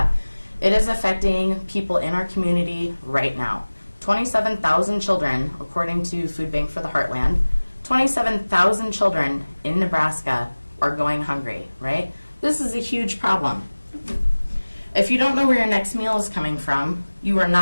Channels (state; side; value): inverted; both; correlation -1.00